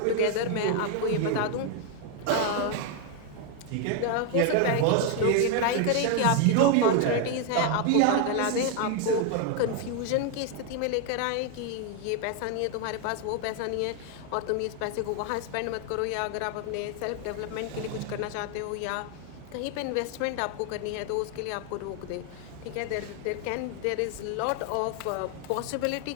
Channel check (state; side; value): different; both; correlation 0.01